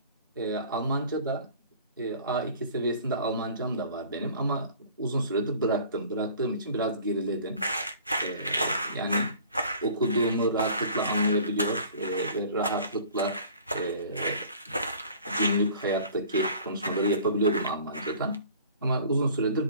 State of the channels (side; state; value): both; inverted; correlation -0.48